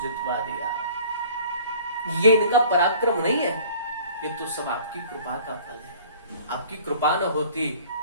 जितवा दिया। ये इनका पराक्रम नहीं है, ये तो सब आपकी कृपा का फल है। आपकी कृपा न होती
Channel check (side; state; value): both; inverted; correlation -0.49